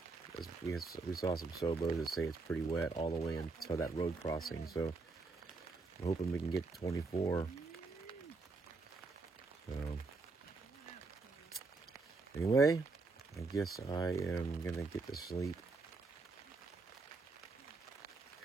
We saw some Sobos that say it's pretty wet all the way until that road crossing. So I'm hoping we can get 24. So anyway, I guess I am going to get to sleep.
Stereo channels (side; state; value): left; quieter; 3.9 dB